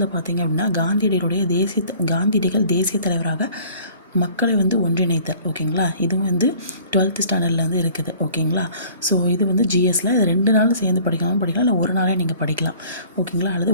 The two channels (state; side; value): inverted; both; correlation -0.51